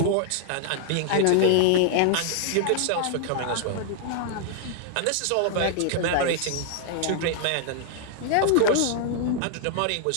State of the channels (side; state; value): both; different; correlation -0.01